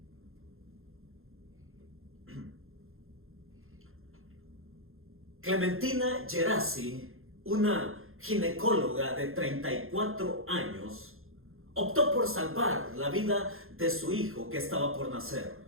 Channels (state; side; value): late; left; 0.61 ms